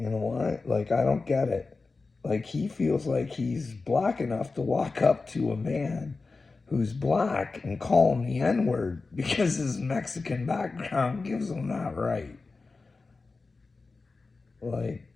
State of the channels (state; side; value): quieter; right; 4.0 dB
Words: know what? Like, I don't get it. Like, he feels like he's black enough to walk up to a man who's black and call him the N word because his Mexican background gives him that right. Like,